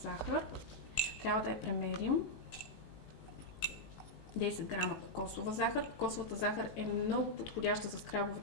захар. Трябва да я премерим. 10 грама кокосова захар. Кокосовата захар е много подходяща за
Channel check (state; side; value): late; right; 19 ms